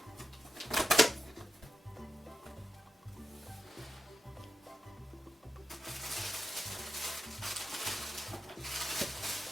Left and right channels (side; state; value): both; normal; correlation 0.88